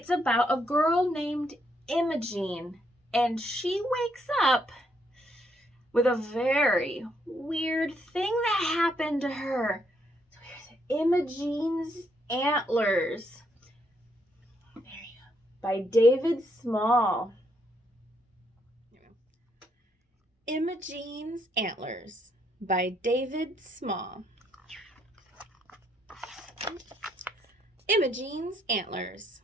about a girl named Imogene, and she wakes up with a very weird thing that happened to her. So here's Imogene's Antlers. There you go. By David Small. Imogene's Antlers by David Small. Imogene's Antlers.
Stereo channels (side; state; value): both; normal; correlation 0.74